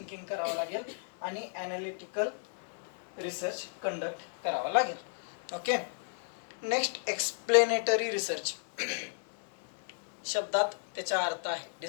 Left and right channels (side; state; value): right; silent; digital silence